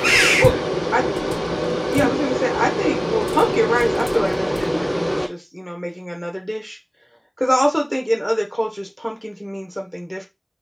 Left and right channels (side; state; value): both; identical; correlation 1.00